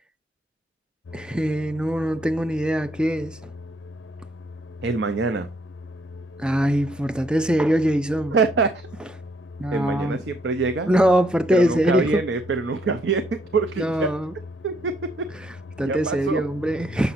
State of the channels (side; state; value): both; normal; correlation 0.70